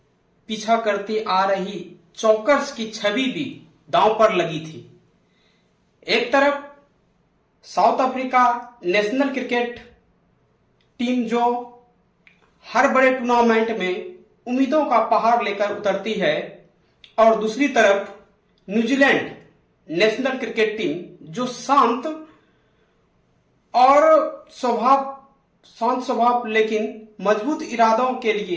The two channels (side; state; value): both; identical; correlation 1.00